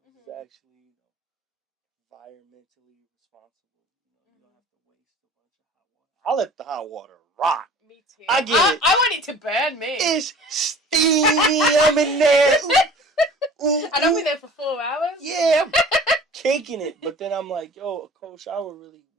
It's actually, environmentally responsible. You don't have to waste a bunch of hot water. I let the hot water rock. Me too. I get it. I want it to burn me. It's steamy. I'm in there. Ooh, and I'll be there for 4 hours. Yeah, I'm caking it. But then I'm like, yo, a cold shower really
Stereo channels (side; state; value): both; normal; correlation 0.45